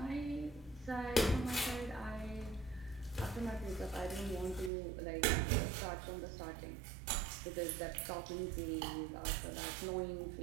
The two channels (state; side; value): drops out; left; at 4.7 s